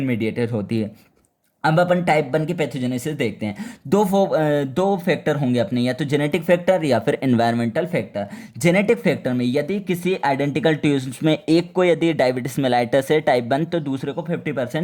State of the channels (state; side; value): identical; both; correlation 1.00